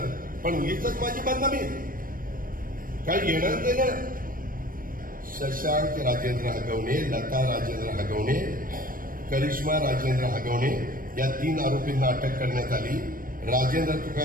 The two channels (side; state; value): left; late; 0.41 ms